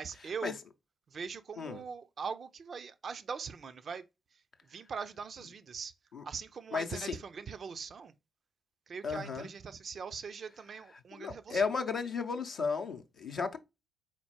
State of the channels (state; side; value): normal; both; correlation 0.76